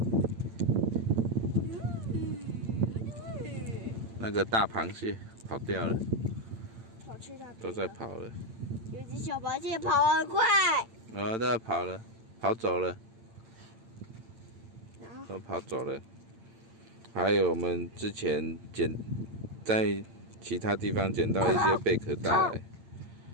那个大螃蟹跑掉了，跑去那边都在跑了。有只小螃蟹跑很快。都在跑了，跑走了，都跑走了。还有我们之前在其他地方捡到一些贝壳带来，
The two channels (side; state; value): left; late; 8.8 ms